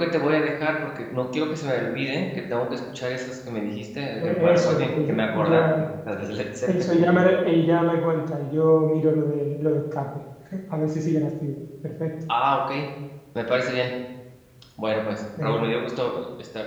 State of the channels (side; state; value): both; identical; correlation 1.00